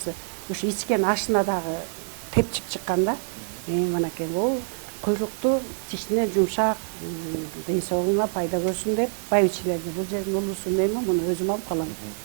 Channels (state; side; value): silent; left; digital silence